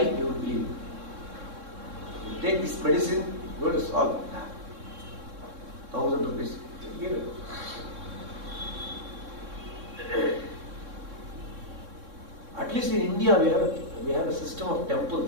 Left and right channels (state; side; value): late; left; 3.6 ms